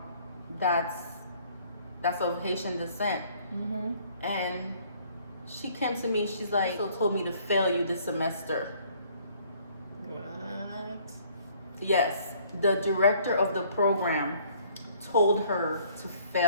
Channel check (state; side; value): inverted; both; correlation -0.60